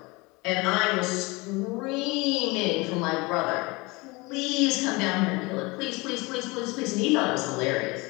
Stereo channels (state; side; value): quieter; right; 24.8 dB